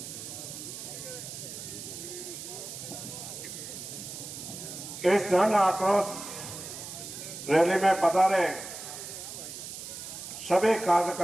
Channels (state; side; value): noise; right; hiss, 10 dB below the sound